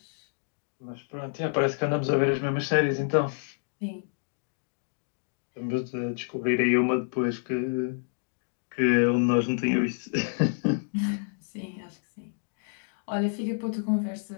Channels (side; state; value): right; silent; digital silence